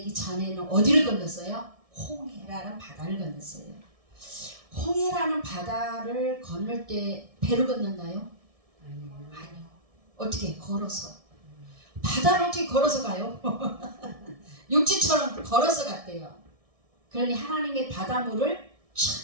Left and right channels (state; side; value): late; left; 1.6 ms